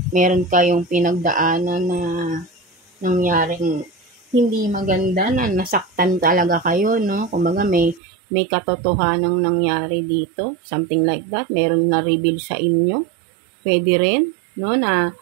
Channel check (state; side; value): drops out; left; at 8.0 s